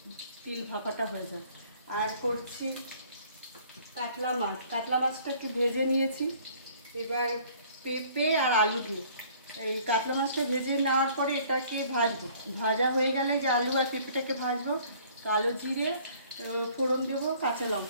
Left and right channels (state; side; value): inverted; both; correlation -0.55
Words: তিল ভাপাটা হয়ে যায়। আর করছি কাতলা মাছ। কাতলা মাছটা একটু ভেজে নিয়েছি। এবার পেঁপে আর আলু দিয়ে এই কাতলা মাছটা ভেজে নেওয়ার পরে এটাকে ভাজবো। ভাজা হয়ে গেলে যে আলু আর পেঁপেটাকে ভাজবো, কালো জিরে ফোড়ন দেবো, কাঁচা